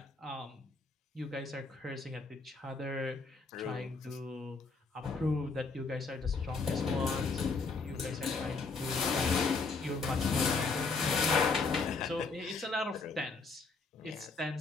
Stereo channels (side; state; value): right; quieter; 4.2 dB